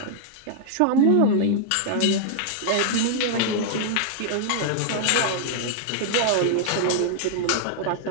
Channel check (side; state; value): both; different; correlation -0.01